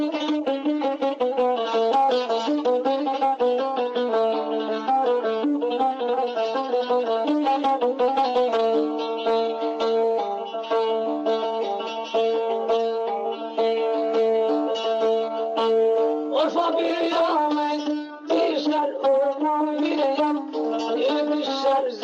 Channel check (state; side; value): identical; both; correlation 1.00